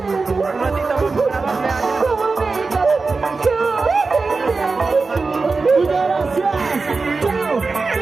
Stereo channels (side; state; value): left; quieter; 4.1 dB